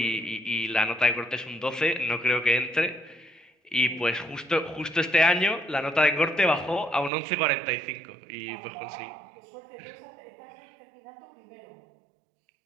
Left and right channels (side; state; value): left; drops out; at 7.1 s